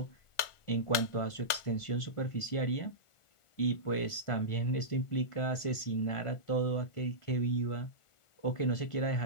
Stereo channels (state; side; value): late; right; 1.4 ms